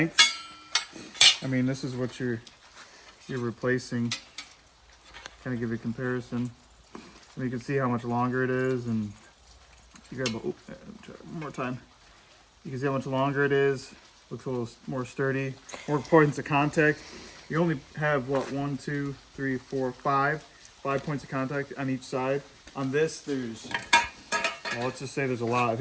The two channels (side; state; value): both; identical; correlation 1.00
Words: I mean, this is what you're replacing. Kind of give you a comparison. And you can see how much longer it is, and you grab one more time. You can see how much longer it is. Looks a little more sturdy, more points of contact. You only have what, 1, 2, 3, 4, 5 points of contact on each side. On this, there's, well, let's just say there's a lot. I